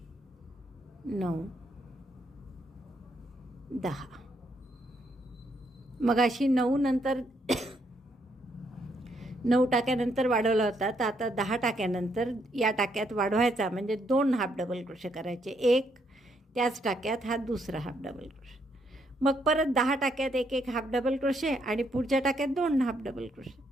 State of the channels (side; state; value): both; normal; correlation 0.74